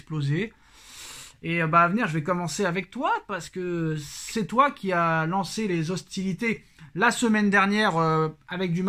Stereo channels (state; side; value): identical; both; correlation 1.00